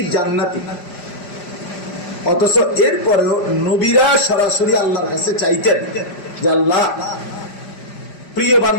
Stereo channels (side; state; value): right; late; 5.0 ms